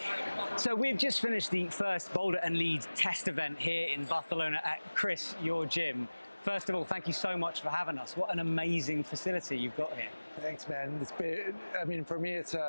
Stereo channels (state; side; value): inverted; both; correlation -1.00